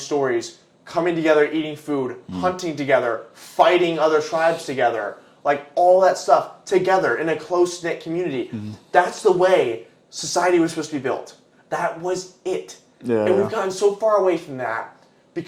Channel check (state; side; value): identical; both; correlation 1.00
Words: coming together, eating food, hunting together, fighting other tribes together, like all that stuff together in a close-knit community. That's the way society was supposed to be built. That was it. Yeah. And we've gotten so far away from that